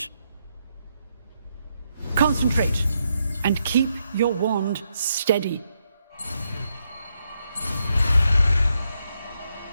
Concentrate and keep your wand steady.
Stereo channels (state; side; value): inverted; both; correlation -0.80